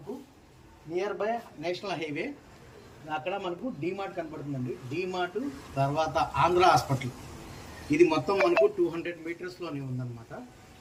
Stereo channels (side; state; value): both; identical; correlation 1.00